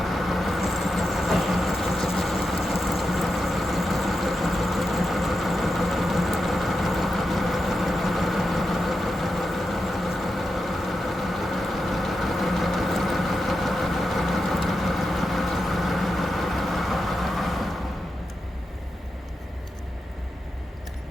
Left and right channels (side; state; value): both; normal; correlation 0.88